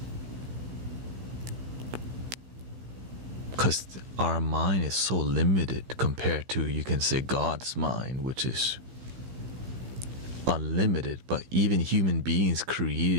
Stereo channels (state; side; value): late; left; 16 ms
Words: Because our mind is so limited compared to, you can say, God's mind, which is unlimited. But even human beings